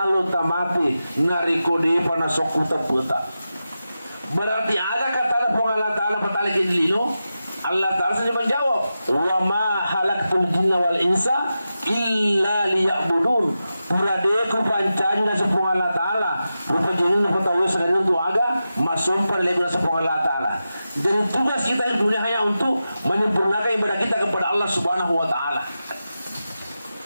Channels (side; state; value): both; inverted; correlation -0.91